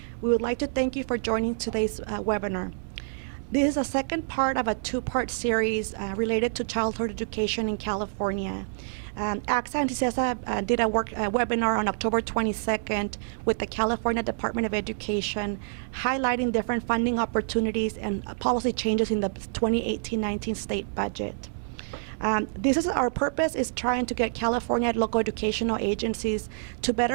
we would like to thank you for joining today's webinar. This is a second part of a two-part series related to childhood education in California. ACSA and CSESA did a webinar on October 22nd with the California Department of Education, highlighting different funding opportunities and policy changes in the 2018-19 state budget. Our purpose is trying to get California local educational agencies to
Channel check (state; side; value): silent; left; digital silence